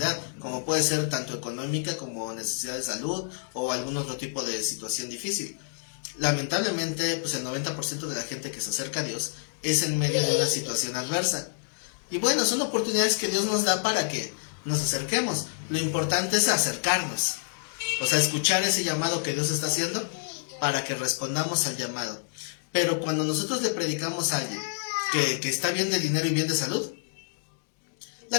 como puede ser tanto económica como necesidad de salud o algún otro tipo de situación difícil. Lamentablemente, pues el 90% de la gente que se acerca a Dios es en medio de una situación adversa. Y bueno, son oportunidades que Dios nos da para que nos acerquemos. Lo importante es acercarnos, o sea, escuchar ese llamado que Dios está haciendo para que respondamos al llamado. Pero cuando nosotros le predicamos a alguien que está bien de dinero y bien de salud, la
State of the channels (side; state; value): right; silent; digital silence